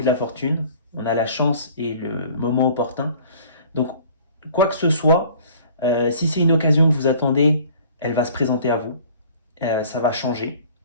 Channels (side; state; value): both; inverted; correlation -0.50